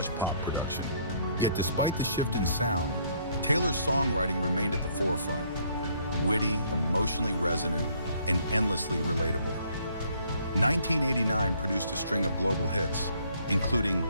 pop production. Yet despite the shift in sound, Taylor's songwriting remained at the forefront, witty, emotionally resonant, and endlessly relatable. 1989 produced a string of global hits, including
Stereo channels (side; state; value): both; inverted; correlation -0.65